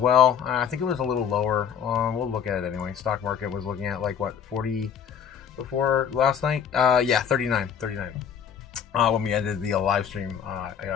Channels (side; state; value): right; quieter; 8.1 dB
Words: I think it was a little lower. We'll look at it anyway. Stock market was looking at like what, 40 before last night? Yeah, 39. When we ended the live stream